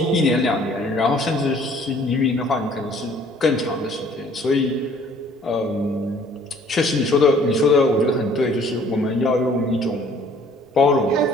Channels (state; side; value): normal; both; correlation 0.56